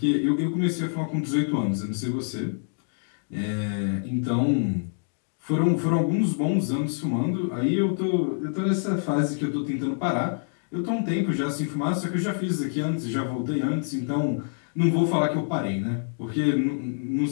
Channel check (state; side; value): silent; right; digital silence